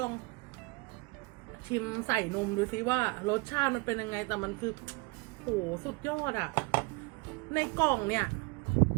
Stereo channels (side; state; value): left; quieter; 27.0 dB